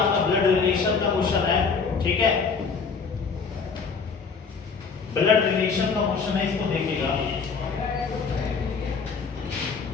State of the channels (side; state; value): right; quieter; 5.3 dB